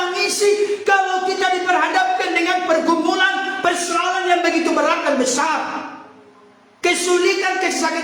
kalau kita diperhadapkan dengan pergumulan, persoalan yang begitu berat dan besar. Kesulitan,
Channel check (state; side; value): identical; both; correlation 1.00